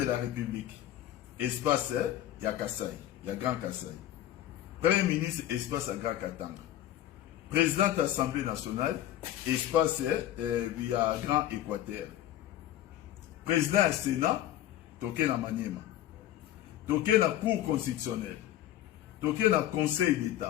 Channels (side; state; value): right; quieter; 12.9 dB